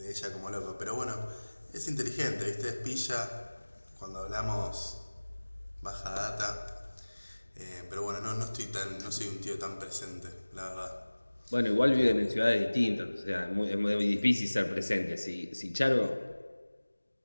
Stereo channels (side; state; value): both; inverted; correlation -1.00